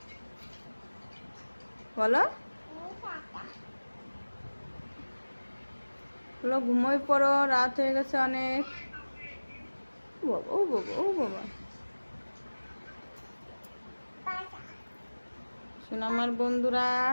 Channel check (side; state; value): both; inverted; correlation -1.00